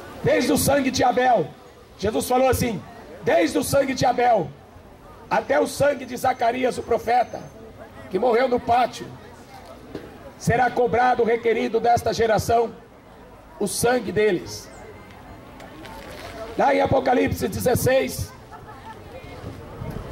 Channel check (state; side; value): identical; both; correlation 1.00